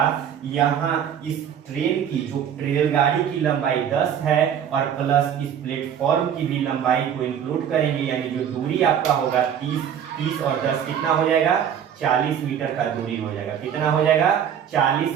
यहाँ इस ट्रेन की, जो रेलगाड़ी की लंबाई 10 है और प्लस इस प्लेटफॉर्म की भी लंबाई को इंक्लूड करेंगे, यानी जो दूरी आपका होगा 30 और 10 कितना हो जाएगा, 40 मीटर का दूरी हो जाएगा। कितना हो जाएगा, 40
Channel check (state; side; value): quieter; left; 8.9 dB